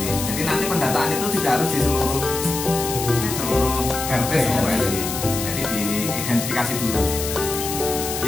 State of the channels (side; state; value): left; noise; hiss, 5 dB below the sound